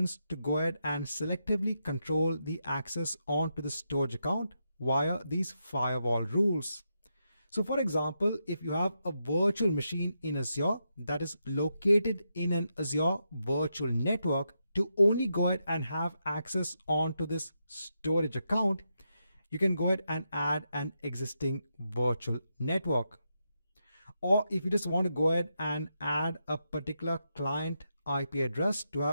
to go ahead and selectively control the access onto the storage account via these firewall rules. So for example, if you have a virtual machine in Azure that is located in an Azure virtual network, to only go ahead and have access onto this storage account, you can go ahead and add an existing virtual network. Or if you just want to go ahead and add a particular client IP address to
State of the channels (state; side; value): inverted; both; correlation -0.84